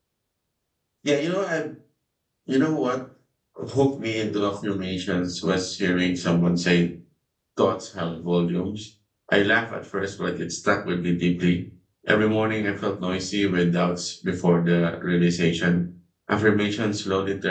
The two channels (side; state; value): both; identical; correlation 1.00